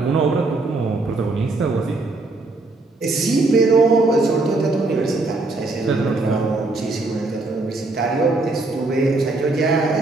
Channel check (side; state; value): left; quieter; 3.2 dB